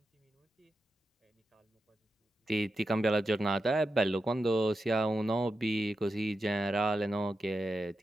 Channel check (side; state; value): both; normal; correlation 0.89